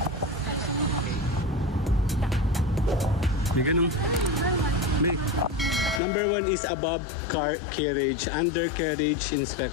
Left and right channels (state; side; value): drops out; right; at 6.0 s